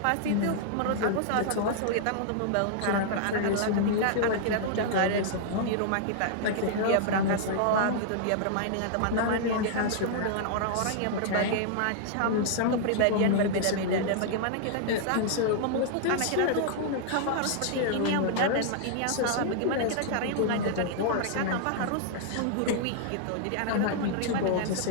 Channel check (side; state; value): both; different; correlation -0.01